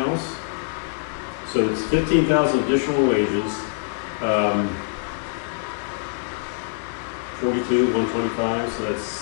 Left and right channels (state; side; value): silent; right; 63 dB below the other